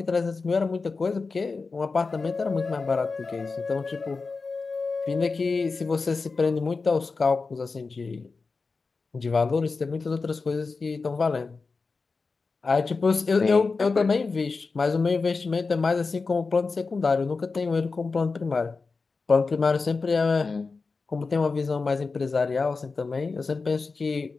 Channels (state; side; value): quieter; right; 4.3 dB